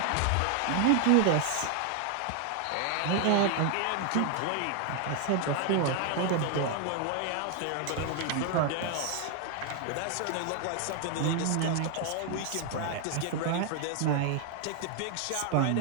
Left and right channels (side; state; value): both; different; correlation 0.00